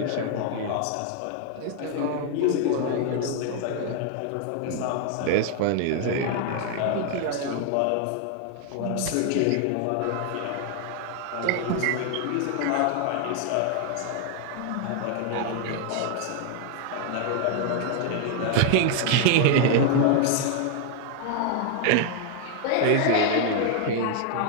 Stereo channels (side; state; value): both; different; correlation 0.00